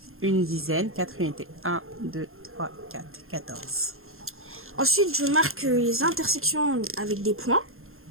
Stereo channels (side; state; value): left; late; 0.61 ms